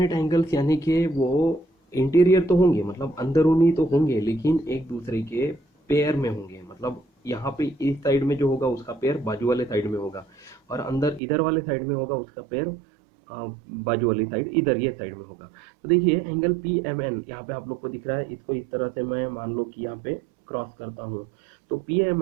एंगल्स यानी कि वो इंटीरियर तो होंगे, मतलब अंदरूनी तो होंगे, लेकिन एक दूसरे के पेयर में होंगे। मतलब यहाँ पे इस साइड में जो होगा उसका पेयर बाजू वाले साइड में होगा, और अंदर इधर वाले साइड में होगा उसका पेयर बाजू वाली साइड इधर ये साइड में होगा। तो देखिए एंगल पी एम एन यहाँ पे आप लोग को दिख रहा है, इसको इस तरह से मैं मान लो कि यहाँ पे क्रॉस करता हूँ, तो पी एम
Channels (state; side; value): drops out; left; at 11.2 s